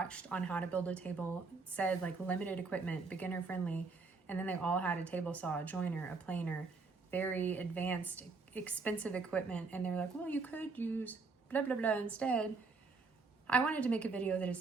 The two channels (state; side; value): quieter; left; 4.3 dB